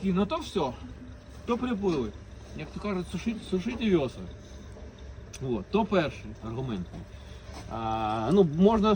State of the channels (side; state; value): both; identical; correlation 1.00